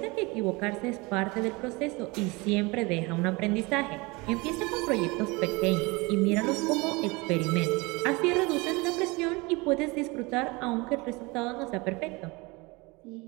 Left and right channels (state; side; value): quieter; left; 25.3 dB